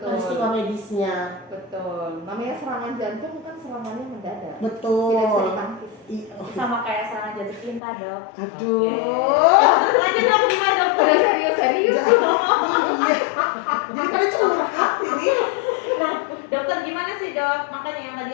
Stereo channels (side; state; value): right; drops out; at 7.8 s